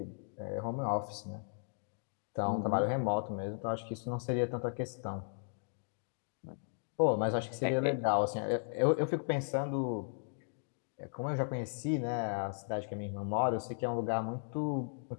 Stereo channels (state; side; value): silent; right; digital silence